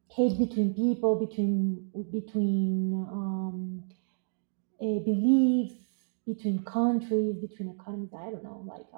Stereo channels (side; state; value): left; silent; digital silence